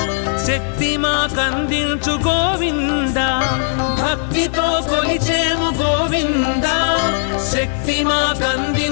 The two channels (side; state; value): right; silent; digital silence